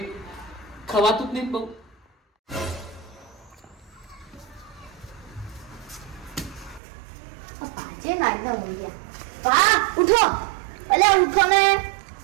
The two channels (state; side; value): drops out; left; at 6.8 s